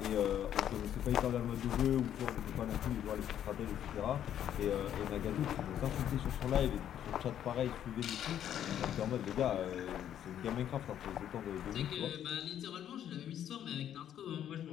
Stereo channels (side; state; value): right; quieter; 10.4 dB